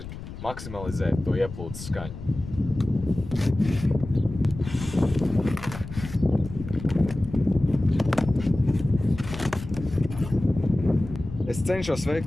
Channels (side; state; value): left; noise; rumble, 11 dB below the sound